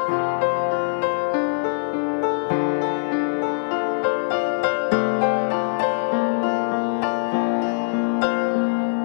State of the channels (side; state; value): right; silent; digital silence